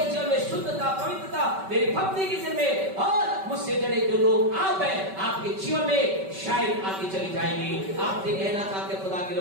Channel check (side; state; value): left; late; 5.2 ms